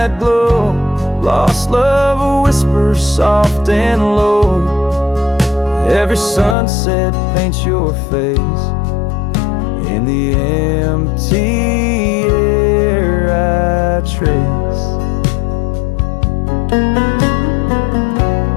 glow, lost love whispers soft and low. Every sunset paints your face in the empty air I trace.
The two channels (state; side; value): drops out; right; at 6.6 s